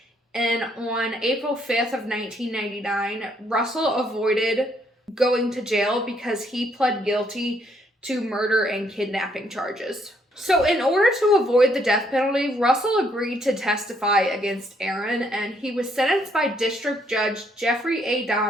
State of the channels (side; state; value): both; normal; correlation 0.70